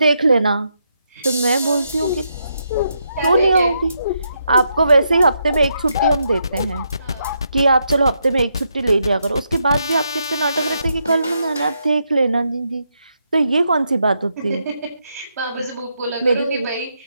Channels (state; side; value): inverted; both; correlation -0.80